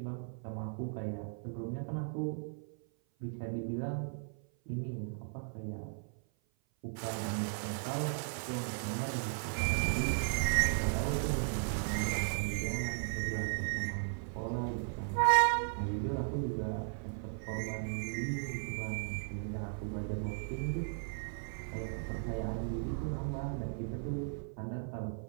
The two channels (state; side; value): silent; left; 53 dB below the other